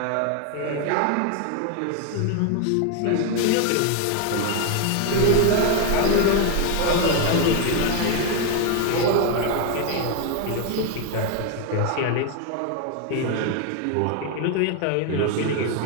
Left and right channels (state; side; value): different; both; correlation 0.01